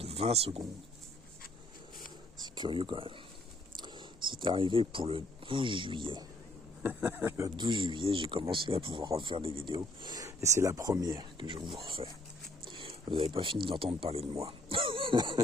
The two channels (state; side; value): normal; both; correlation 0.65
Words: 20 secondes. C'est curieux quand même. C'est arrivé pour le 12 juillet. Le 12 juillet, j'ai commencé à pouvoir refaire des vidéos. Et c'est la première que je vous refais. Vous n'avez pas fini d'entendre parler de moi.